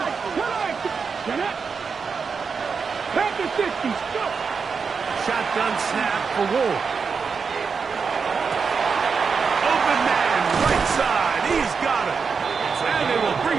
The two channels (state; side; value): quieter; left; 5.5 dB